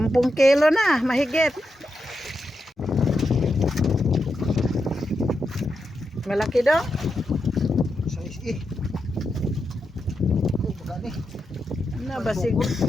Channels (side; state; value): both; normal; correlation 0.86